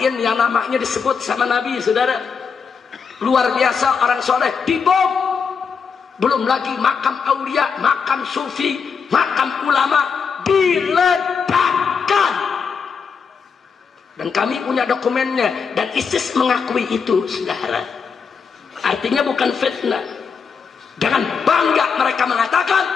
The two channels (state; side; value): quieter; right; 6.0 dB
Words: yang namanya disebut sama Nabi, saudara. Luar biasa orang soleh, dibom. Belum lagi makam aulia, makam sufi, makam ulama diledakkan. Dan kami punya dokumennya, dan ISIS mengakui itu, saudara. Artinya bukan fitnah. Dengan bangga mereka mengatakan,